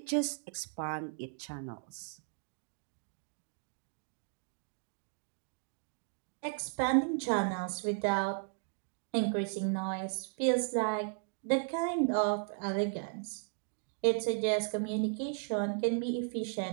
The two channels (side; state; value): left; silent; 54 dB below the other